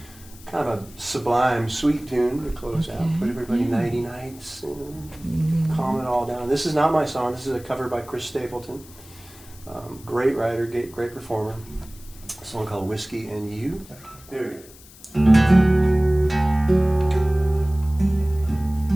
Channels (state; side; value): noise; left; hiss, 22 dB below the sound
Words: kind of a sublime, sweet tune to close out. Put everybody nighty nights and calm it all down. This is not my song. This is a cover by Chris Stapleton. Great writer, great performer. A song called Whiskey and You. There we go.